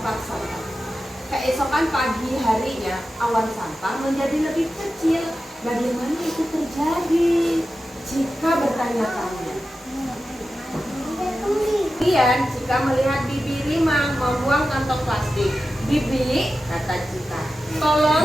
sampah. Keesokan pagi harinya, awan sampah menjadi lebih kecil. Bagaimana itu terjadi? Cika bertanya-tanya. Kemudian Cika melihat Bibi Rimang membuang kantong plastik. Bibi, kata Cika,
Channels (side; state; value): both; normal; correlation 0.92